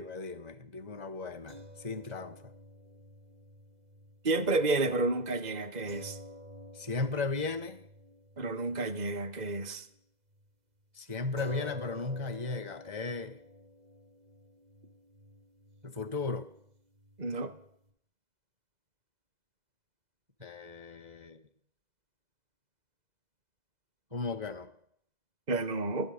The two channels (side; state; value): left; late; 2.0 ms